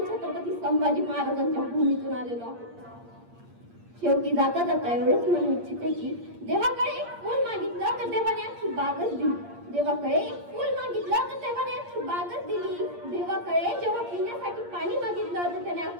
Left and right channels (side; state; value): left; late; 8.6 ms